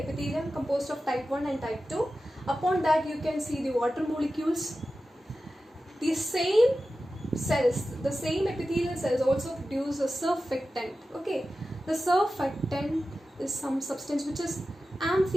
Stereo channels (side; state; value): both; normal; correlation 0.93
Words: composed of type 1 and type 2. Upon that you can see the water molecules. The same cells, the same epithelial cells also produce a surfactant. Okay, the surfactant is some substance which is